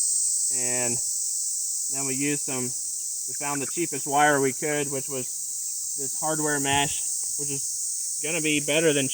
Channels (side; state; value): both; identical; correlation 1.00